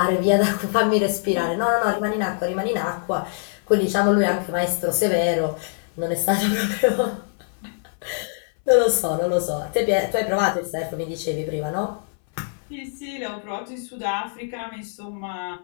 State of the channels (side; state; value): right; silent; 63 dB below the other